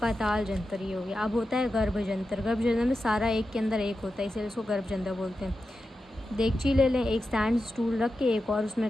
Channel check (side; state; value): both; normal; correlation 0.90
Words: ये हो गया। अब होता है गर्भ जंतर। गर्भ जंतर में सारा एक के अंदर एक होता है, इसलिए इसको गर्भ जंतर बोलते हैं। देगची ले लें, एक स्टैंड स्टूल रख के एक और उसमें